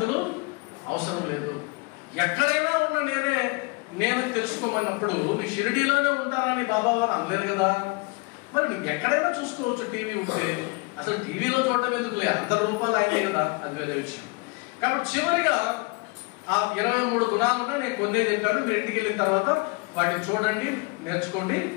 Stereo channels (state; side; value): quieter; right; 28.4 dB